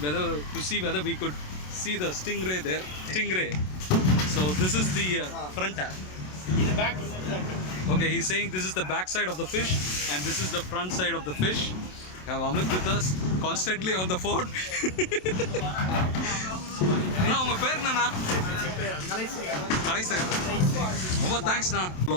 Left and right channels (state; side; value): late; right; 27 ms